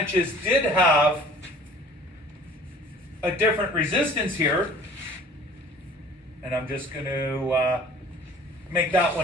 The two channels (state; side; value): normal; both; correlation 0.49